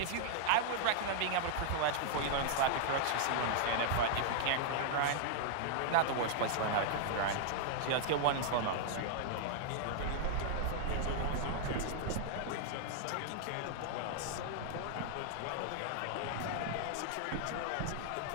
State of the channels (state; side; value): different; both; correlation -0.01